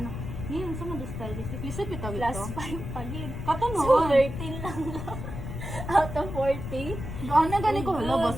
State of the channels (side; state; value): left; noise; rumble, 7 dB below the sound